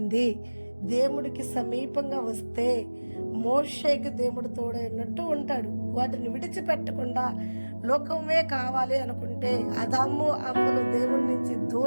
దేవుడికి సమీపంగా వస్తే మోషేకి దేవుడు తోడైనట్టు ఉంటాడు. వాటిని విడిచిపెట్టకుండా లోకమే కావాలి అనుకుంటే ఆదాము అవ్వలు దేవుడి నుంచి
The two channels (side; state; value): both; inverted; correlation -1.00